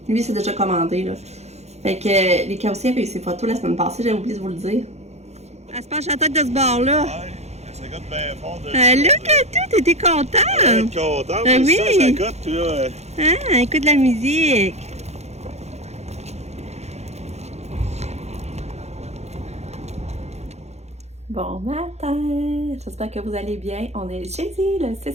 Lui, c'est déjà commandé, là. Fait que les cas aussi avaient eu ses photos la semaine passée, j'avais oublié de vous le dire. Elle se penche la tête de ce bord-là. Ouais, ça goûte bien fort de là, Katou, t'étais contente? content, oui. Ça goûte, puis là... Ah, écoute la musique. Bon matin, j'espère que vous allez bien. On est jeudi, le 6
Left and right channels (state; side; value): late; left; 0.32 ms